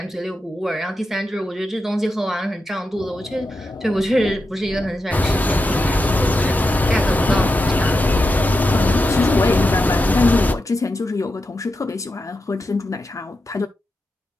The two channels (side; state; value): both; normal; correlation 0.88